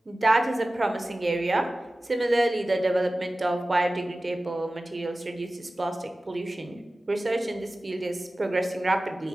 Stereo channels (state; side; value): normal; both; correlation 0.96